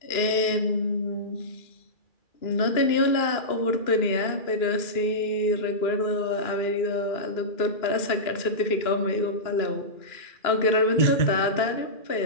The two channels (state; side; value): late; right; 2.9 ms